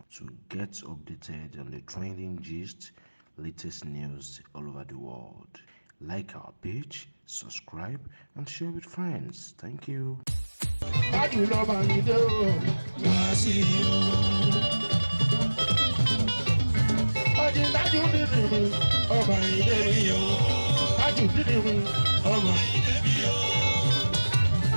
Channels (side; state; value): both; inverted; correlation -1.00